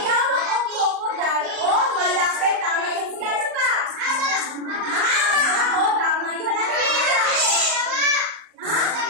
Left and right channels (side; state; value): left; late; 38 ms